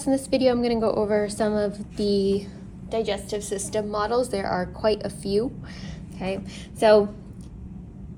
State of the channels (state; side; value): identical; both; correlation 1.00